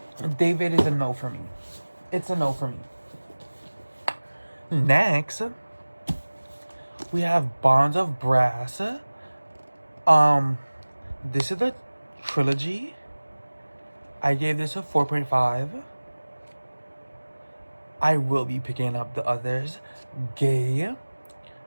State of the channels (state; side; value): inverted; both; correlation -1.00